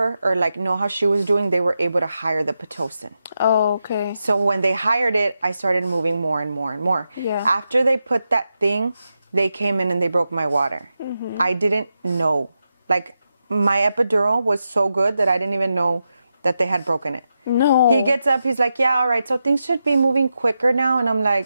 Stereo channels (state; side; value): inverted; both; correlation -0.87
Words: or like know how she was doing, they were able to hire the Pitocin. Oh, okay. So when they hired it, I started moving more and more and more. Yeah. After they put that thing, they came in and they broke my water. I didn't know. Like, my epidural was so good that I didn't even know that they had broken it. No. He gets up, he's like, yeah, all right, so things should be moving quicker now. And I'm